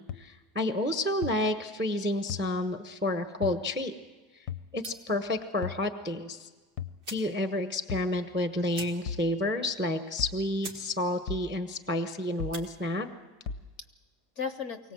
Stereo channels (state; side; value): normal; both; correlation 0.39